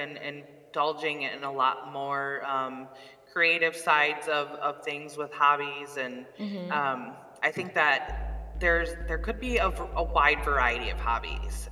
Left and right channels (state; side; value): identical; both; correlation 1.00